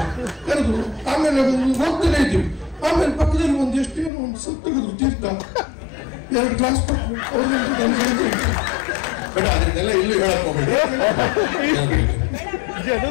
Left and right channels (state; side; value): drops out; right; at 4.1 s